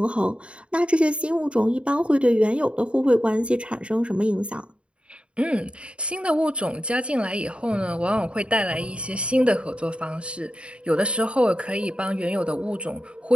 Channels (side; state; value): left; late; 0.058 ms